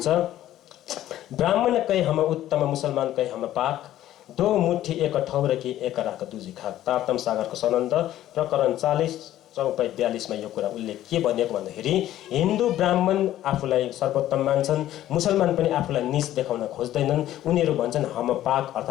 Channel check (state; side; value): quieter; right; 13.2 dB